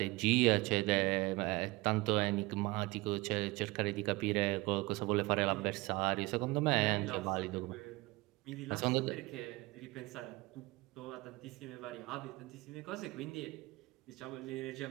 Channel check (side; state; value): left; quieter; 22.1 dB